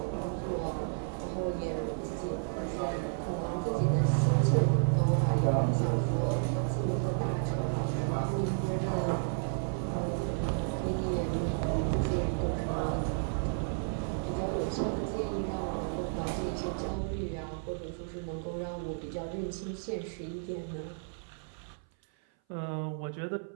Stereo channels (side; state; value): left; silent; 56 dB below the other